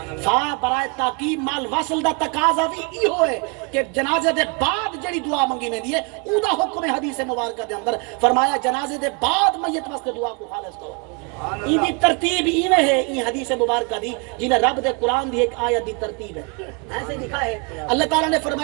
فا برائے تاکید مال وصل دا تقاضا بھی ای ہوئے کہ جنازے دے بعد جڑی دعا منگی میں دیئے او دا حکم حدیث مبارکہ دے اندر فرمایا جنازے دے بعد میت واسطے دعا کو خالص کرو ای دی ترتیب ایویں ہے ای حدیث مبارکہ دی جنہیں رب دے قرآن دی ایک آیت دی ترتیب ہے ایسے لکھا ہے اللہ تعالیٰ نے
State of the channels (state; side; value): quieter; left; 33.2 dB